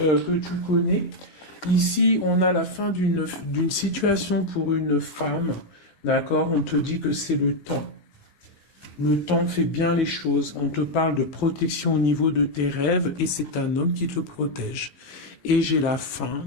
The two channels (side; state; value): right; late; 15 ms